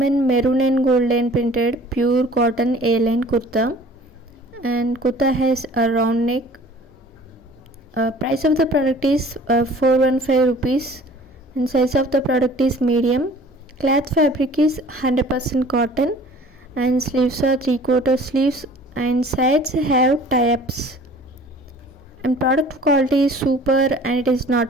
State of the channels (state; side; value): normal; both; correlation 0.49